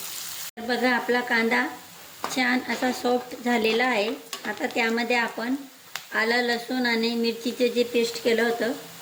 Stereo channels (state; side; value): identical; both; correlation 1.00